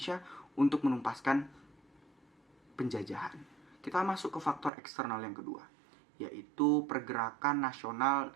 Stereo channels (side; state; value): left; drops out; at 4.7 s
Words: untuk menumpaskan penjajahan. Kita masuk ke faktor eksternal yang kedua, yaitu pergerakan nasional